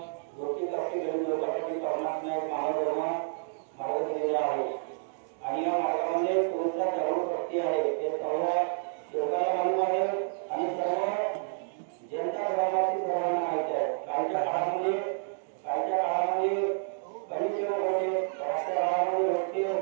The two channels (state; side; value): silent; left; digital silence